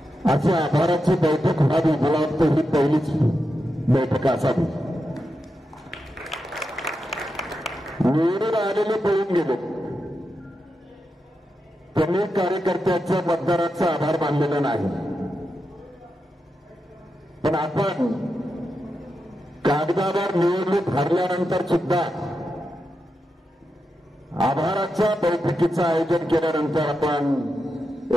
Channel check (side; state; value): both; normal; correlation 0.87